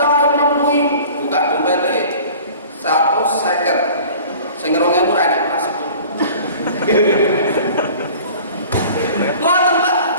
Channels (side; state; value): both; inverted; correlation -0.44